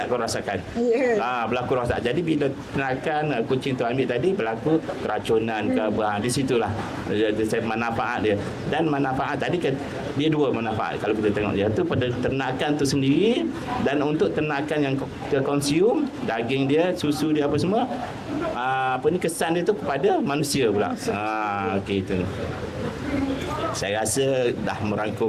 kau rasakan? Berlaku rasa. Jadi bila ternakan kucing tu ambil tadi, berlaku keracunan ke di situlah manfaat dia. Dan manfaat tadi kan dia dua manfaat kalau kita tengok dia tu pada ternakan tu sendiri, dan untuk ternakan yang kita consume daging dia, susu dia apa semua, kesan dia tu kepada manusia pula. Okey, itu saya rasa dah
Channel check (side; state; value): both; identical; correlation 1.00